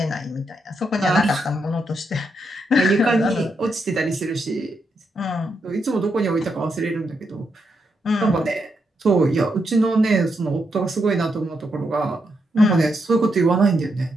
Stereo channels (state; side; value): normal; both; correlation 0.81